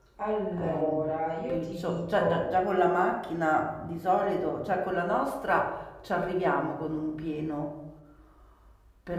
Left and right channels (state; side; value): identical; both; correlation 1.00